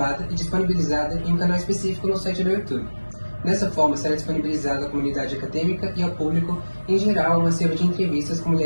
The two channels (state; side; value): inverted; both; correlation -1.00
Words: e disponibilizada em um canal específico no site do YouTube. Dessa forma, será disponibilizada à comunidade acadêmica e ao público, em geral, uma série de entrevistas com